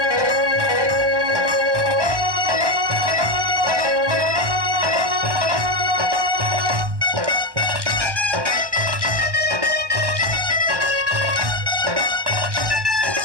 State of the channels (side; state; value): left; late; 1.1 ms